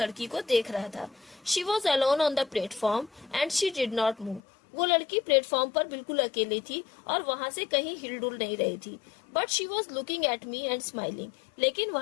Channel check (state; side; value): drops out; right; at 4.4 s